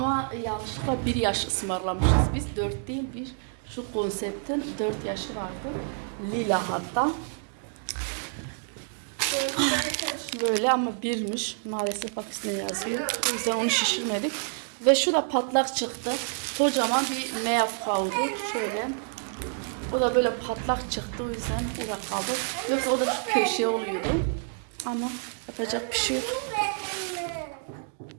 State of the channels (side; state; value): left; silent; 59 dB below the other